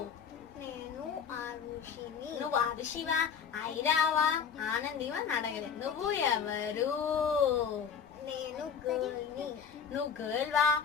నేను ఆరుషిని. నువ్వు ఆరుషివా, ఐరావా, ఆనందివా అని అడగలేదు. నువ్వు ఎవరు? నేను గర్ల్ని. నువ్వు గర్ల్ వా,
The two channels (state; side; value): quieter; right; 6.9 dB